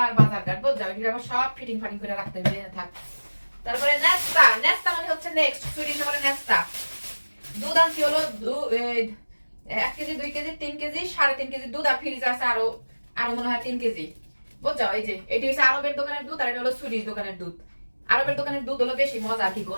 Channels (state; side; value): inverted; both; correlation -1.00